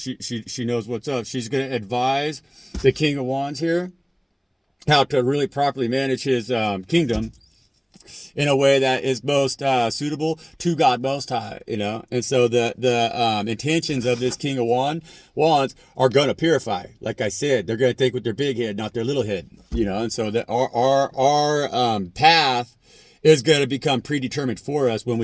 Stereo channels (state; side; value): identical; both; correlation 1.00